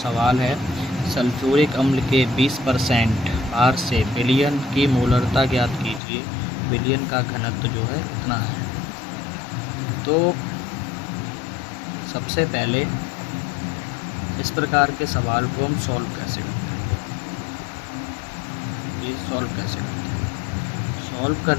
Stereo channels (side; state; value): right; drops out; at 6.0 s